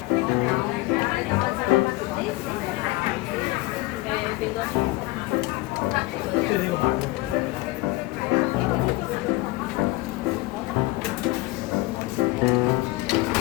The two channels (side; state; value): right; quieter; 20.2 dB